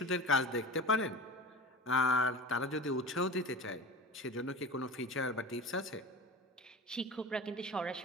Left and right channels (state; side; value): normal; both; correlation 0.34